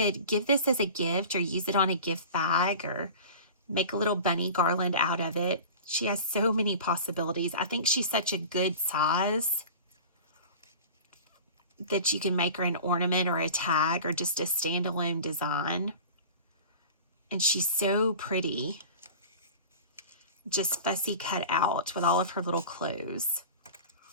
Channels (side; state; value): both; inverted; correlation -0.37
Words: give this as a gift or use it on a gift bag or make a little bunny garland out of it. She has so many possibilities. I think she's such a good size that you can make her an ornament or a tag or just a standalone design. And she's so pretty. Just fussy cut out with all of her little clothes.